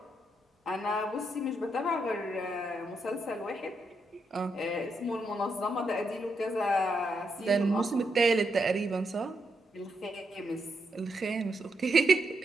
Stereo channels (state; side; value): normal; both; correlation 0.81